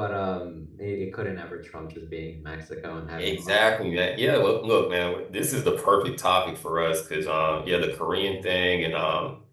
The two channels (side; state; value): both; identical; correlation 1.00